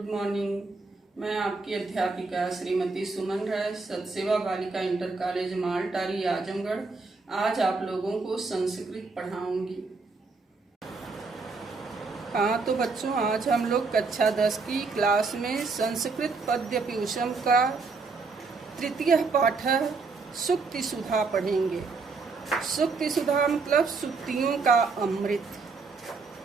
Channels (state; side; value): quieter; left; 4.3 dB